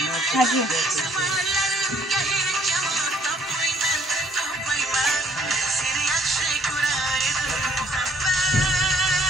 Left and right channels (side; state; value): both; normal; correlation 0.63